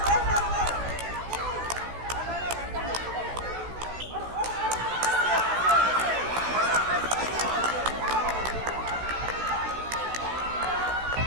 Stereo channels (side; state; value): left; late; 16 ms